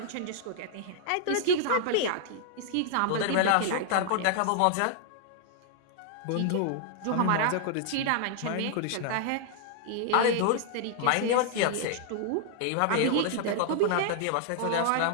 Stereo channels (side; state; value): both; different; correlation -0.01